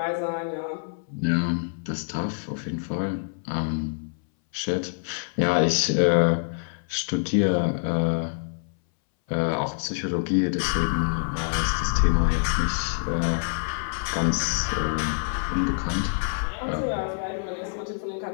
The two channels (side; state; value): right; silent; 60 dB below the other